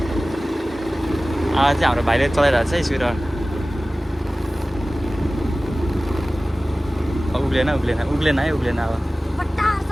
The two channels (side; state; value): both; normal; correlation 0.97